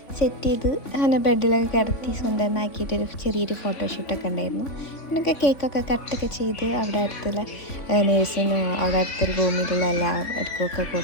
സെറ്റ് ചെയ്ത് അങ്ങനെ ബെഡിലൊക്കെ കിടത്തി സുന്ദരനാക്കിയിട്ടൊരു ചെറിയൊരു ഫോട്ടോഷൂട്ടൊക്കെ ഉണ്ടായിരുന്നു. പിന്നൊക്കെ കേക്കൊക്കെ കട്ടൊക്കെ ചെയ്ത് അവിടെ അടുത്തുള്ള നേഴ്സിനും അവിടെ അടുത്തുള്ള റൂമിലുള്ള എല്ലാവർക്കൊക്കെ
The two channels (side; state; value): right; late; 3.5 ms